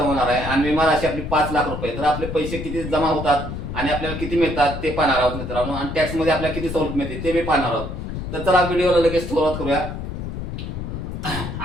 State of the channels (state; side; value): noise; left; rumble, 6 dB below the sound